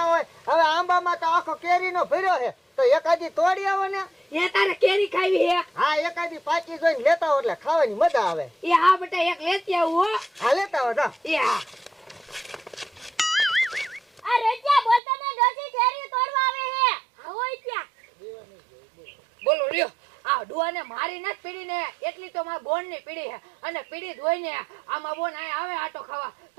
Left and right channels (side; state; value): left; drops out; at 15.0 s